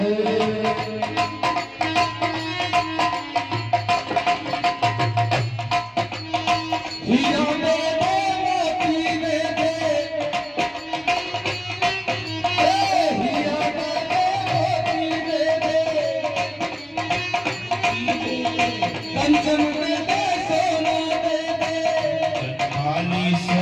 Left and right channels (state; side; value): identical; both; correlation 1.00